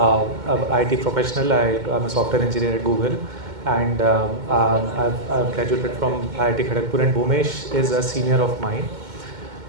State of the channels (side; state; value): left; late; 2.1 ms